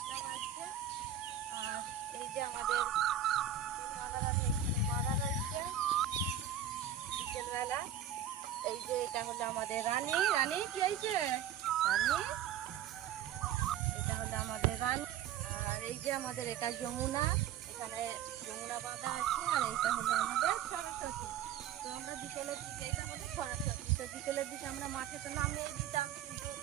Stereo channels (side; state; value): left; quieter; 9.2 dB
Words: বাজছে। আর এই যে আমাদের মাদারানি এখানে বাঁধা রয়েছে বিকেলবেলা। এই যে এটা হলো আমাদের রানী। রানী কি হয়েছে? রানী, এটা হলো আমাদের রানী। আর এই যে আমাদের এটা যমুনা, এখানে যমুনা বাঁধা আছে। আর এইটা হলো আমাদের সরস্বতী। তো আমরা বিকেলের দিকে, এটা হলো সরস্বতী, তো বিকেলের দিকে আমরা মাঠে তো নামিয়ে দিতাম, কিন্তু